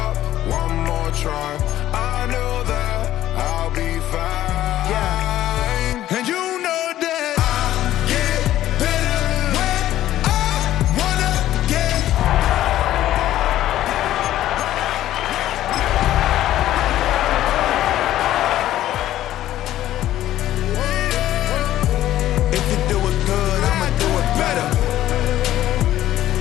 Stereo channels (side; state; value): right; quieter; 13.4 dB